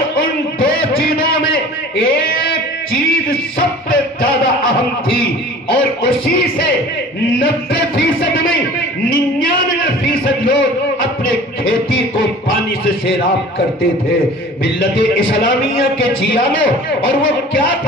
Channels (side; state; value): both; normal; correlation 0.43